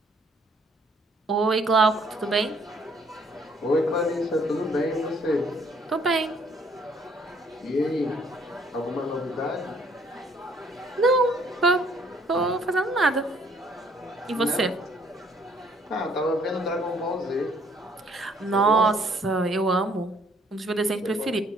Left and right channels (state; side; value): normal; both; correlation 0.63